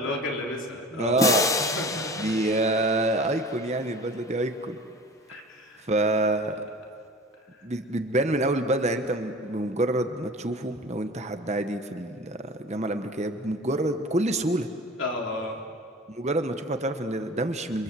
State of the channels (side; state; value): both; normal; correlation 0.40